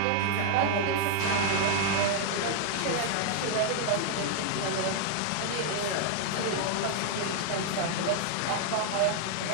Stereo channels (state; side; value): different; both; correlation 0.00